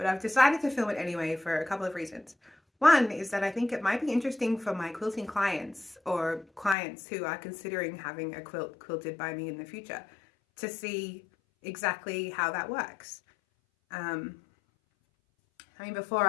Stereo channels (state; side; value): drops out; right; at 6.8 s